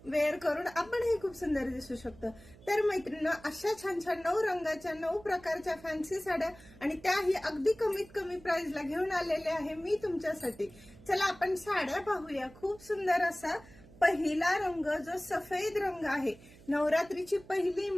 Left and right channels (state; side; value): noise; right; hum, 22 dB below the sound